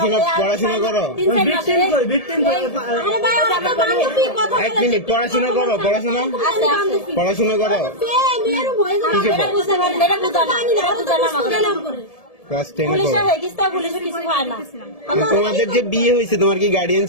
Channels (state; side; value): late; right; 1.7 ms